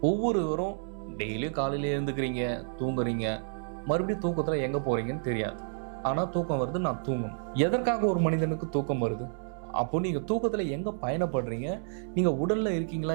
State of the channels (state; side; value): silent; left; 58 dB below the other